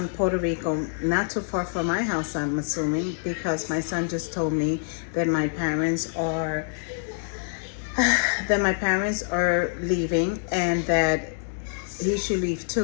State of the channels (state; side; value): silent; right; digital silence